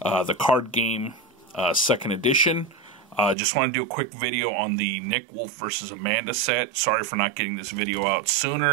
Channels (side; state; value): left; drops out; at 3.4 s